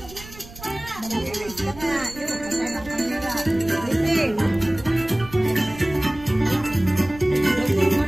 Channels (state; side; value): noise; right; rumble, 18 dB below the sound